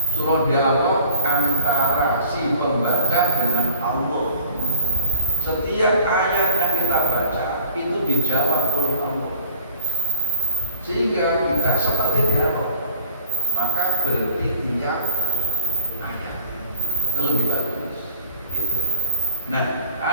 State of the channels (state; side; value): inverted; both; correlation -0.46